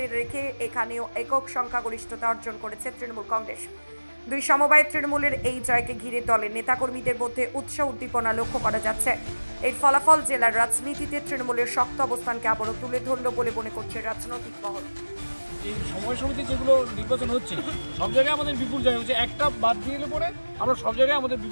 রেখে এখানেও একক সংখ্যাগরিষ্ঠতা অর্জন করেছে তৃণমূল কংগ্রেস। দুই সমবায় তৃণমূলের এই জয়কে ঘিরে দলের নেতাকর্মীদের মধ্যে উৎসাহ উদ্দীপনা লক্ষ্য করা যাচ্ছে। এই ফলাফল জেলার রাজনীতিতে তৃণমূলের শক্ত অবস্থানকে আবারও তুলে ধরল বলে মনে করছে রাজনৈতিক মহল। এই সমবায় সমিতি যেগুলো নির্বাচন হচ্ছে সব জায়গায় আমাদের বিপুল জয় হচ্ছে, একটা বাদ দিয়ে এলে পরে আমরা সব জায়গায় আমাদের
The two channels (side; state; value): both; inverted; correlation -1.00